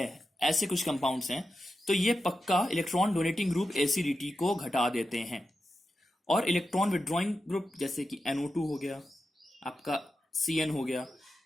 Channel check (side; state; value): both; normal; correlation 0.90